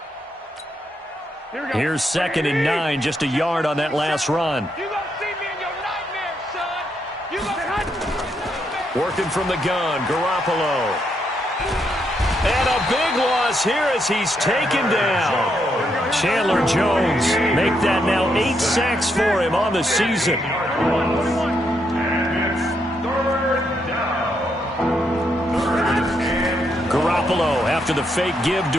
Here's 2nd and 9, just a yard on that last run. You gonna see me in your nightmares, son. You gonna Working from the gun, Garoppolo. And a big loss here as he's taken down. Chandler Jones make that now 8 sacks for him on the season. Garoppolo after the fake give to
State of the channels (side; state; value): both; normal; correlation 0.78